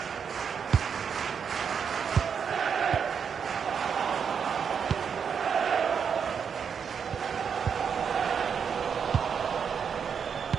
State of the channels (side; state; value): left; quieter; 6.9 dB